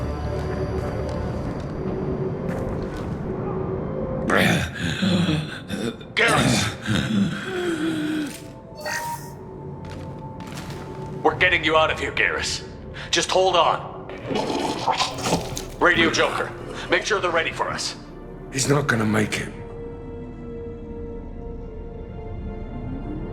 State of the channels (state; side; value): identical; both; correlation 1.00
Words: We're getting you out of here, Garrus. Just hold on. Radio Joker, make sure they're ready for us. He's not gonna make it.